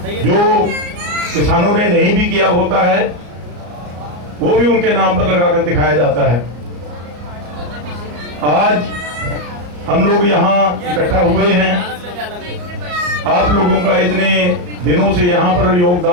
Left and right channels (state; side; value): late; left; 34 ms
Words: जो किसानों ने नहीं भी किया होता है वो भी उनके नाम पर लगाकर दिखाया जाता है। आज हम लोग यहाँ इकट्ठा हुए हैं, आप लोगों का इतने दिनों से यहाँ पर